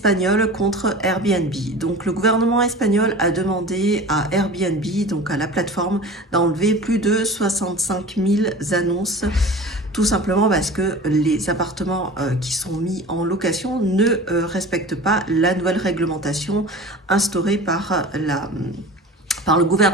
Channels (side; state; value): both; normal; correlation 0.37